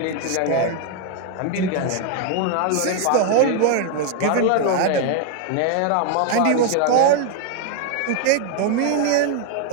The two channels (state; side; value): different; both; correlation 0.00